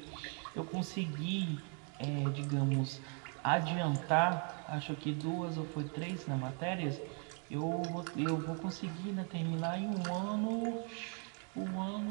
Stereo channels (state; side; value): quieter; left; 39.5 dB